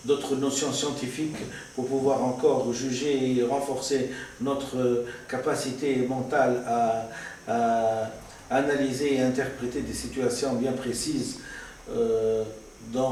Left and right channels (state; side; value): identical; both; correlation 1.00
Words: scientifiques pour pouvoir encore juger et renforcer notre capacité mentale à analyser et interpréter des situations bien précises